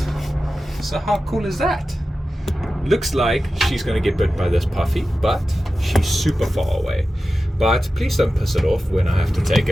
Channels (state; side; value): normal; both; correlation 0.93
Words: So how cool is that? Looks like she's going to get bit by this puffy, but she's super far away. But please don't piss it off when I have to take